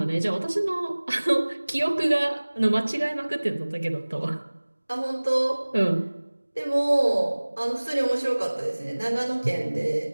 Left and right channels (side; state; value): both; inverted; correlation -1.00